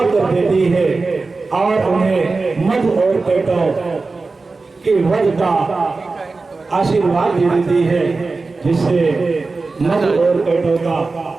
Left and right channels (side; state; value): left; quieter; 3.9 dB